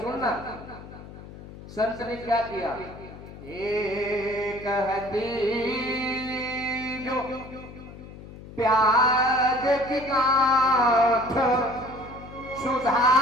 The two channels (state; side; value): noise; left; hum, 16 dB below the sound